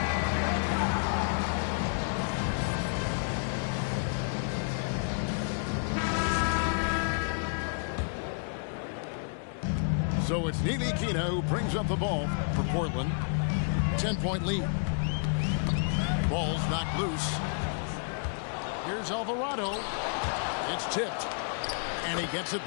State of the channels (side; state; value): right; silent; digital silence